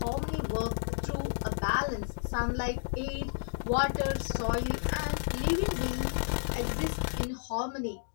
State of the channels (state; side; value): silent; right; digital silence